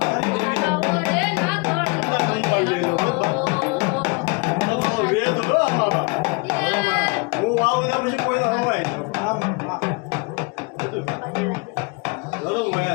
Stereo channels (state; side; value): quieter; right; 29.6 dB